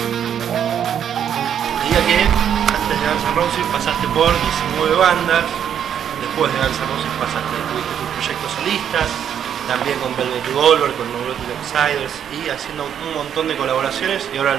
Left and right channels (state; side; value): quieter; left; 9.0 dB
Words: que antes de Guns N' Roses pasaste por 19 bandas, después de Guns N' Roses tuviste tus proyectos solistas, también con Revolver, con Neurotic Outsiders y haciendo un montón de colaboraciones y ahora